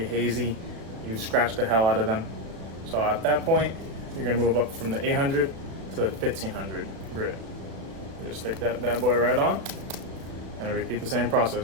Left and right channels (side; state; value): left; late; 35 ms